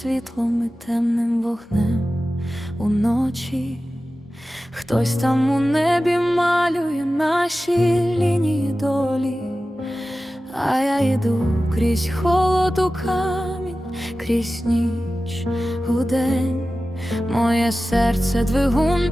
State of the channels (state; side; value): normal; both; correlation 0.95